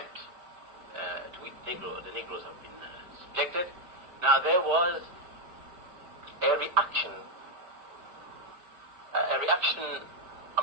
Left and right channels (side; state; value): left; late; 4.8 ms